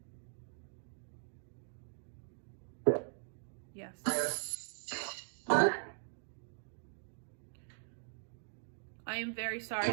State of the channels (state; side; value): silent; left; digital silence